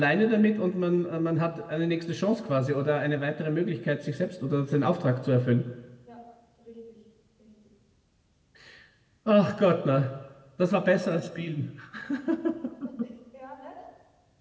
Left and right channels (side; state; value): both; identical; correlation 1.00